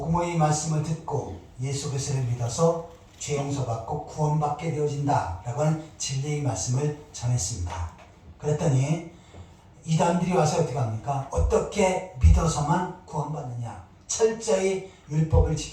말씀을 듣고 예수 그리스도를 믿어서 죄 용서받고 구원받게 되어진다 라고 하는 진리의 말씀을 전했습니다. 그랬더니 이단들이 와서 어떻게 합니까? 어떻게 믿어서만 구원받느냐? 철저히 율법을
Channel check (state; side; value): identical; both; correlation 1.00